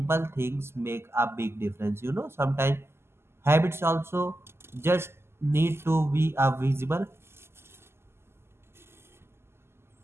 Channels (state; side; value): late; left; 0.12 ms